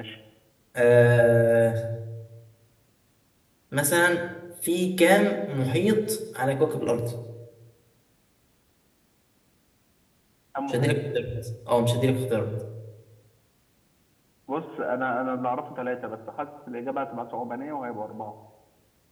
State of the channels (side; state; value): both; identical; correlation 1.00